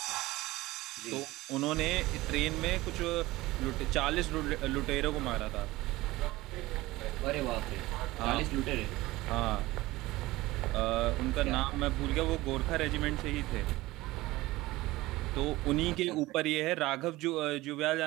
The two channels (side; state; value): left; quieter; 18.9 dB